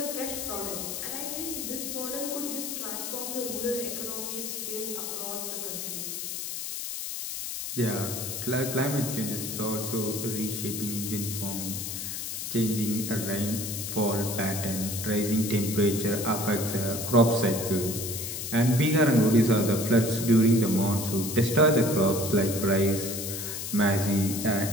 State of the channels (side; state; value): left; noise; hiss, 5 dB below the sound